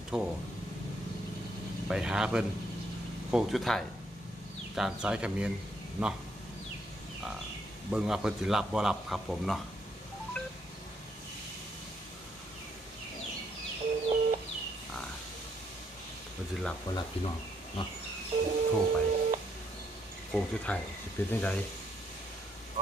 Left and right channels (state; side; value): normal; both; correlation 0.74